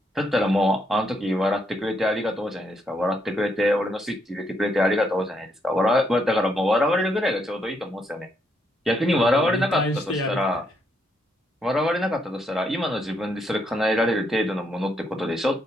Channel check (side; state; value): both; normal; correlation 0.76